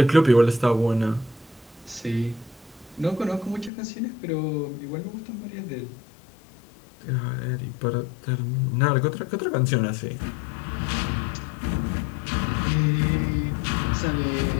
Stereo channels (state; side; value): drops out; right; at 3.7 s